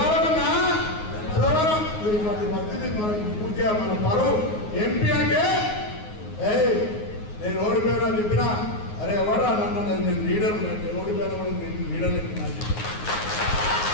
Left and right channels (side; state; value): right; late; 9.5 ms